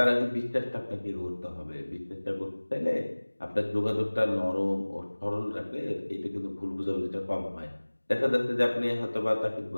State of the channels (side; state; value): both; inverted; correlation -1.00